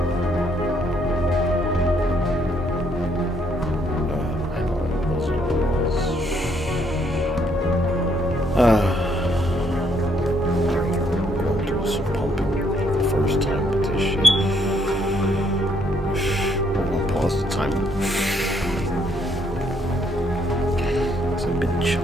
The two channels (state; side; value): normal; both; correlation 0.71